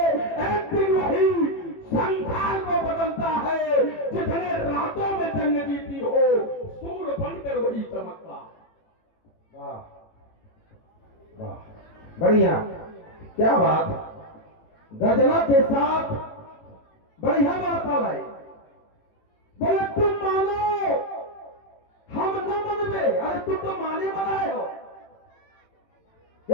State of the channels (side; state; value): right; late; 18 ms